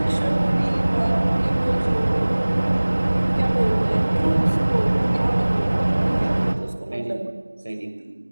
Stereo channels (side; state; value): both; inverted; correlation -1.00